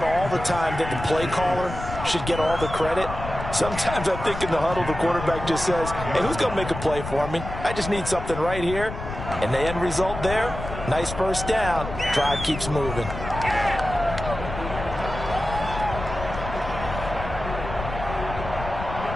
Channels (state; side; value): noise; left; rumble, 8 dB below the sound